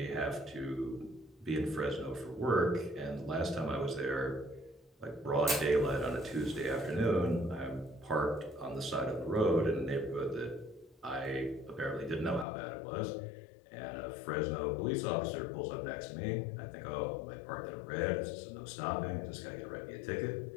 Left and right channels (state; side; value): drops out; right; at 12.5 s